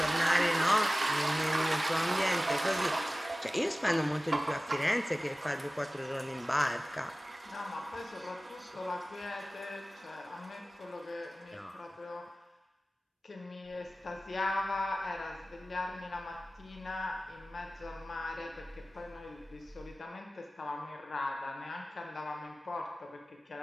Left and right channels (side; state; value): both; normal; correlation 0.97